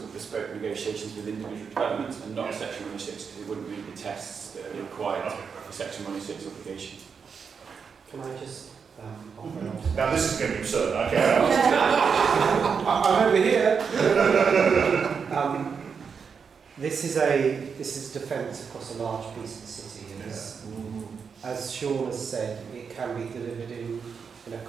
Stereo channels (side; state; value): left; quieter; 6.1 dB